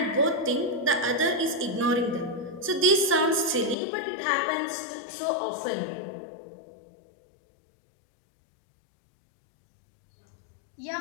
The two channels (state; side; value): drops out; right; at 3.8 s